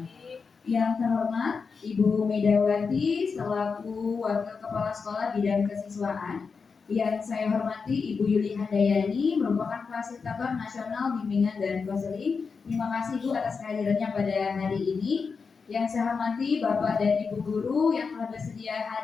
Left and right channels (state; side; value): quieter; right; 5.2 dB